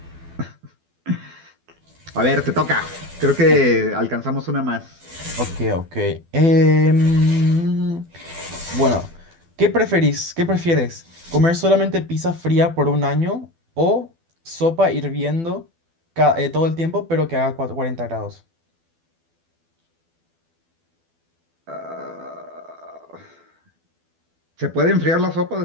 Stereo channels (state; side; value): late; left; 12 ms